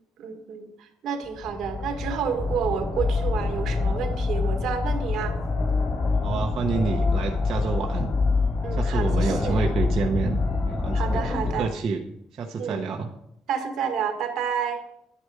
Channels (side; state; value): both; normal; correlation 0.77